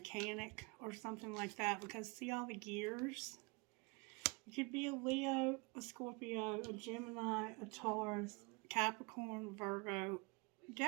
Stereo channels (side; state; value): left; quieter; 29.0 dB